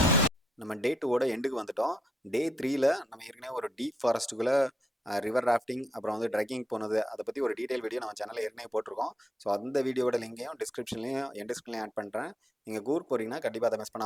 நம்ம டே 2ஓட எண்டுக்கு வந்துட்டோம். டே 3ல் நம்ம ஏற்கனவே ஒரு டீப் ஃபாரஸ்ட்டுக்குள்ளே ரிவர் ராஃப்டிங் அப்புறம் வந்து ட்ரெக்கிங் போனது அதை பற்றி ஒரு டீட்டெயில் வீடியோ நம்ம சேனலில் ஏற்கனவே போட்டிருக்கோம். ஸோ அந்த வீடியோட லிங்கையும் டிஸ்கிரிப்ஷன்லையும் என் டிஸ்கிரிப்ஷன்லையும் ஆட் பண்ணுறேன். நீங்கள் கூர் போகிறீங்கன்னா கண்டிப்பாக அதை மிஸ்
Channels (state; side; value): normal; both; correlation 0.80